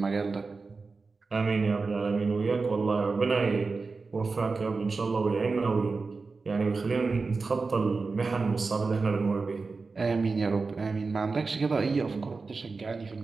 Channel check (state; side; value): quieter; left; 4.2 dB